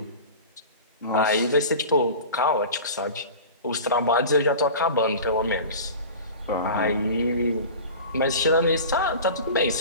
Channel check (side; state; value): both; inverted; correlation -0.36